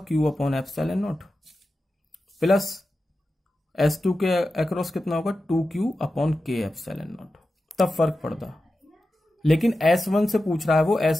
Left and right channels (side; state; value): both; normal; correlation 0.92